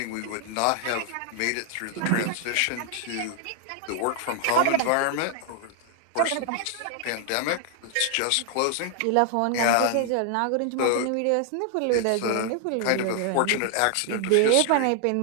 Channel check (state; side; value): different; both; correlation 0.00